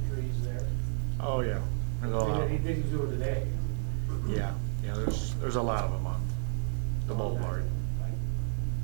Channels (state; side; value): silent; left; 56 dB below the other